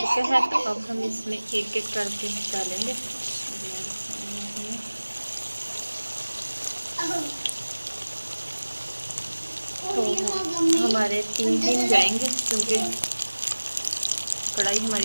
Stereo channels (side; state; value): both; inverted; correlation -1.00